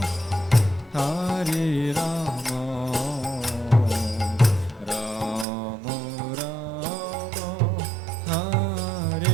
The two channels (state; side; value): drops out; left; at 5.5 s